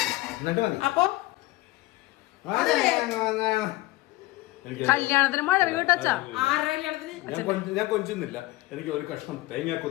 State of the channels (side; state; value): right; quieter; 18.9 dB